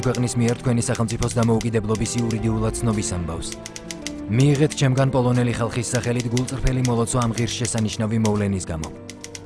ქვეყნის მიერ თქვენი სახელმწიფოს დამოუკიდებლობის იურიდიულად ცნობის ამბავს. მიიღეთ ჩემგან პოლონელი ხალხის სახელით გულწრფელი მოლოცვა ამ ღირსშესანიშნავი მოვლენის გამო.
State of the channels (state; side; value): identical; both; correlation 1.00